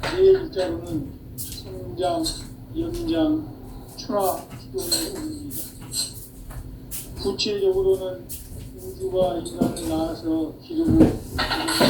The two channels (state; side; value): identical; both; correlation 1.00